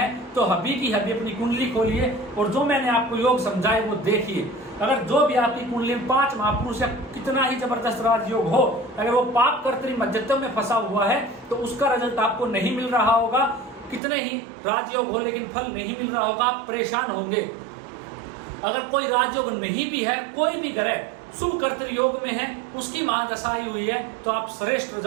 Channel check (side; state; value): left; drops out; at 14.0 s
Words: तो हबी की हबी अपनी कुंडली खोलिए और जो मैंने आपको योग समझाए वो देखिए। अगर जो भी आपकी कुंडली में 5 महापुरुष या कितना ही जबरदस्त राजयोग हो, अगर वो पाप कर्तरी मध्यत्व में फंसा हुआ है तो उसका रिजल्ट आपको नहीं मिल रहा होगा। कितने ही राजयोग हो लेकिन फल नहीं मिल रहा होगा, आप परेशान होंगे। अगर कोई राजयोग नहीं भी है, कोई भी ग्रह शुभ कर्तरी योग में है, उसकी महादशा आई हुई है, तो आप श्रेष्ठ